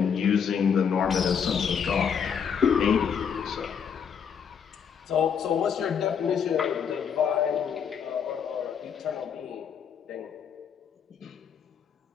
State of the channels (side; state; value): right; quieter; 7.2 dB